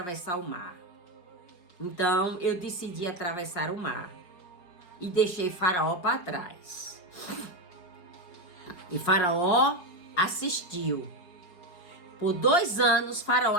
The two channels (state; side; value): late; right; 5.6 ms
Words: o mar. Então eu decidi atravessar o mar e deixei Faraó para trás. E Faraó assistiu. Por 2 anos, Faraó